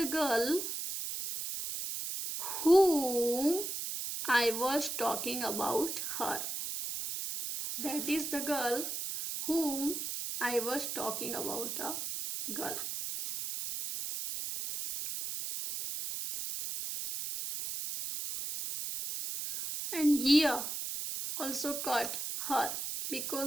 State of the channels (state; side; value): noise; right; hiss, 4 dB below the sound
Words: girl whom I was talking about her. That is the girl whom I was talking about a girl. And here also cut her